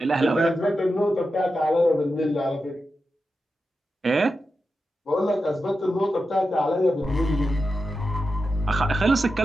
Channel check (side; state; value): both; normal; correlation 0.90